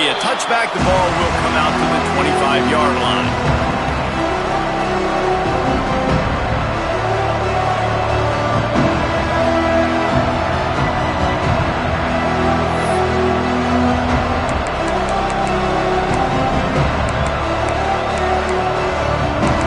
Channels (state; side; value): identical; both; correlation 1.00